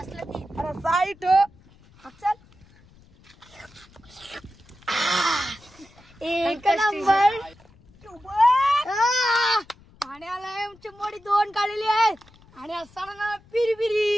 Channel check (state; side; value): noise; left; rumble, 27 dB below the sound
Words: अरे साईट चल. एक नंबर. पाण्याला चिंबोडी 2 काढलेली आहे आणि असताना